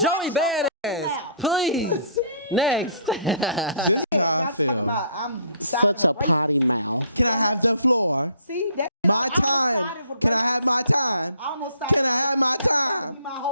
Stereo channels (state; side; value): inverted; both; correlation -0.59